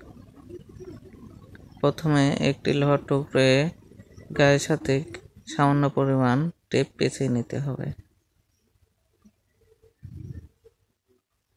প্রথমে একটি লোহার টুকরো গায়ের সাথে সামান্য পরিমাণ টেপ পেঁচিয়ে নিতে হবে।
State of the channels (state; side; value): identical; both; correlation 1.00